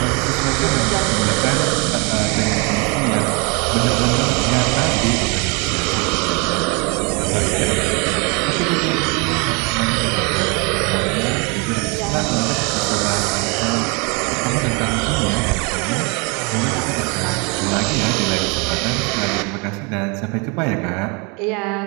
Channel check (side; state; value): left; quieter; 31.6 dB